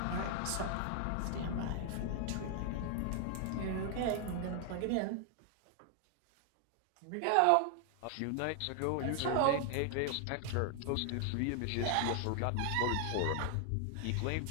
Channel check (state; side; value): different; both; correlation 0.00